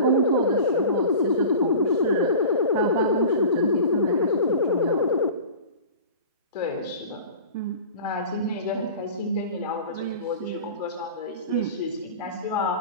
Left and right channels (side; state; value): both; inverted; correlation -0.37